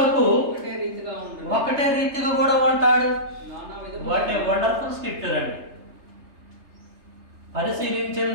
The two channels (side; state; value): left; late; 3.3 ms